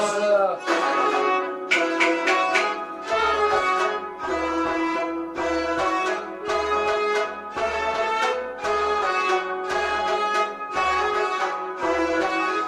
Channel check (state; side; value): identical; both; correlation 1.00